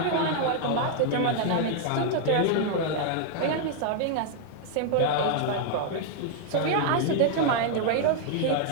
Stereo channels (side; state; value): both; different; correlation 0.00